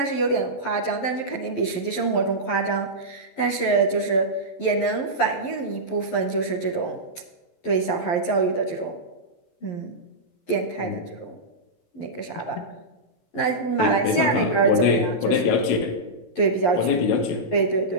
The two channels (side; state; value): right; late; 11 ms